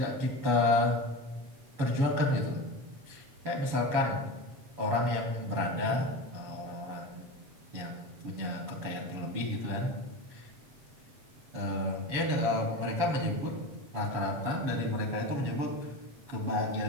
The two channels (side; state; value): left; late; 7.1 ms